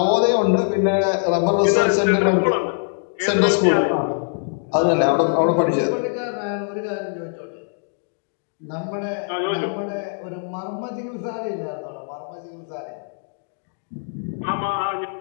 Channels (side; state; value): right; silent; 64 dB below the other